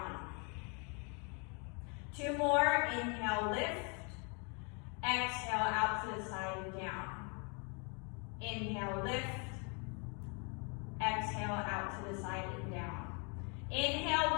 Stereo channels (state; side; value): quieter; right; 35.4 dB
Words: 2 more. Inhale, lift. Exhale, out to the side and down. Inhale, lift. Exhale, out to the side and down. Inhale,